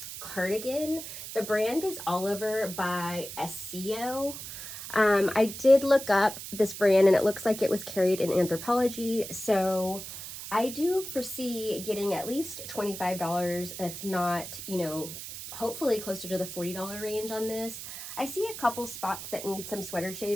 cardigan. The brand is Oliver by SCO. I did look up this brand and it looks like it was carried in Anthropologie, so I do foresee getting at least $25, if not, hopefully closer to the $40 range on this. I see a couple spots that need some sweater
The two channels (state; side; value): noise; right; hiss, 10 dB below the sound